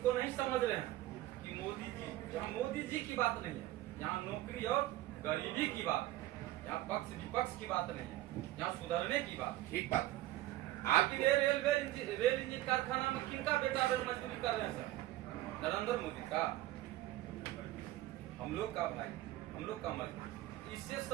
को नहीं समझ रहे हैं कि मोदी जी, यहाँ मोदी जी की बात नहीं है, यहाँ नौकरी और गरीबी की बात है। यहाँ पक्ष विपक्ष की बात नहीं है, यहाँ सुधरने की बात। ठीक बात। आखिर रेल इंजन कारखाना में किनका बेटा मजदूरी कर रहे हैं सर? नरेंद्र मोदी का, हम लोग का भाई, हम लोग का मत, इससे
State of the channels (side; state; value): left; quieter; 15.9 dB